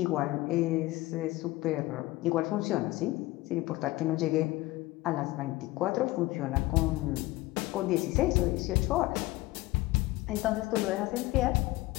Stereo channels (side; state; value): right; quieter; 19.1 dB